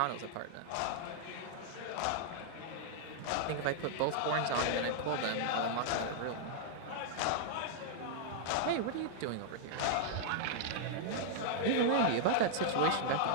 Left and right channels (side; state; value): both; different; correlation -0.01